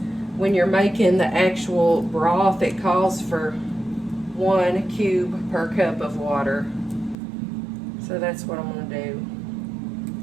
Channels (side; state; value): left; drops out; at 7.2 s